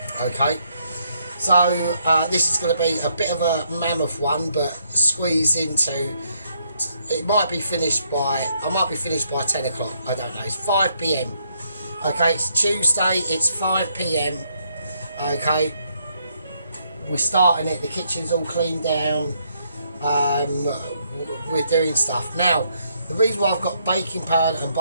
Okay. So this is going to be a bit of a mammoth one, but squeeze into. It might be finished by. I might be finished by 10 o'clock. I don't know. It's 5 p.m. Okay. It's Tuesday. It's 5 p.m. Okay. We're starting it. The kitchen's all cleaned down. We're doing stuff now. The reason why I've got baking powder and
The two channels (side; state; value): both; inverted; correlation -0.73